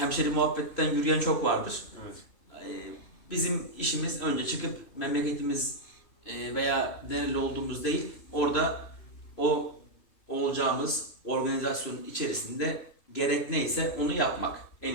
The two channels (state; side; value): late; right; 3.0 ms